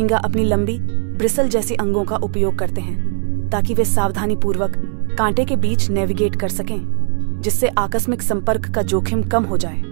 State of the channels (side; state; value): left; silent; 56 dB below the other